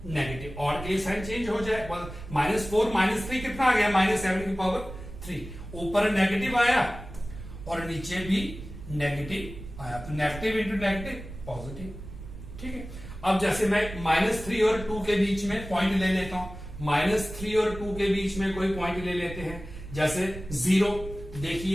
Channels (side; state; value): right; noise; rumble, 12 dB below the sound